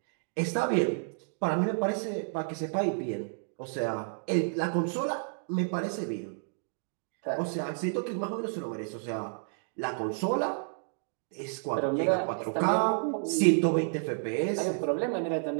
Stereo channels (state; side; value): silent; left; digital silence